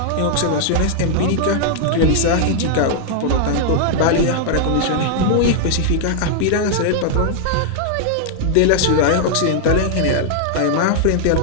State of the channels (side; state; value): both; different; correlation -0.01